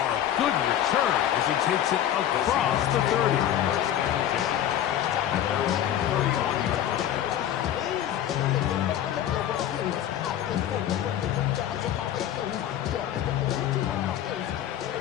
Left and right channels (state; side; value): quieter; right; 11.1 dB